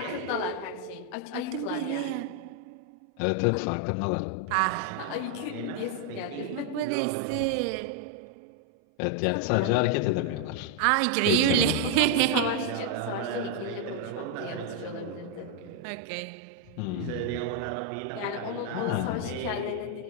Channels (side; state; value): both; different; correlation 0.00